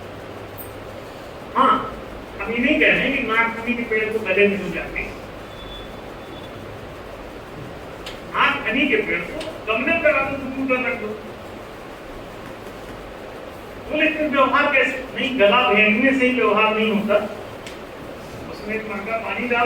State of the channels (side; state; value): both; identical; correlation 1.00